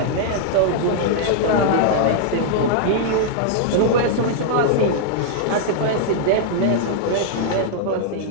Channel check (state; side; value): different; both; correlation -0.01